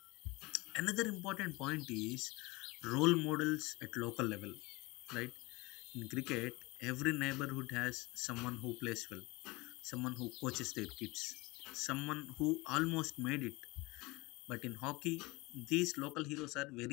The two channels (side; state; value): right; quieter; 23.2 dB